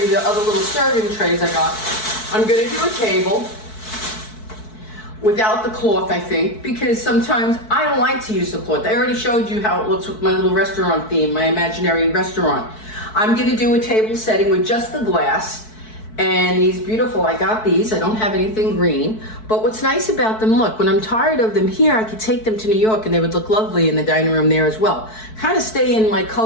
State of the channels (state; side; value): late; right; 4.6 ms